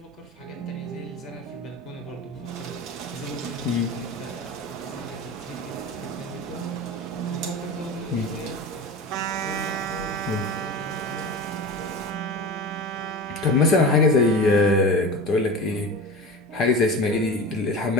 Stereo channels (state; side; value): normal; both; correlation 0.31